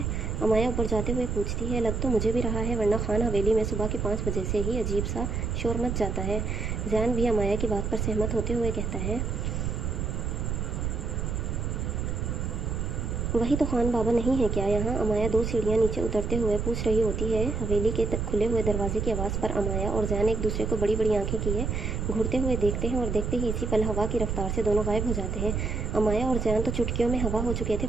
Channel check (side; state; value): right; noise; rumble, 2 dB below the sound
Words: अमाया ऊपर जाते हुए पूछती है। लग तो मुझे भी रहा है, वरना खान हवेली में सुबह के 5 बजे से ही अजीब सा शोर मच जाता है। ज़ैन भी अमाया की बात पर सहमत होते हुए कहता है, वही तो खान बाबा नहीं है क्या यहाँ? अमाया 2 सीढ़ियाँ नीचे उतरते हुए पूछ रही होती है। हवेली के खुले हुए दरवाजे की आवाज़ पर अमाया और ज़ैन एक दूसरे को बड़ी बड़ी आंखें किए घूरते हुए देखते हैं और देखते ही इसी पल हवा की रफ्तार से दोनों गायब हो जाते हैं। अमाया और ज़ैन तो चुटकियों में हवा हो चुके थे,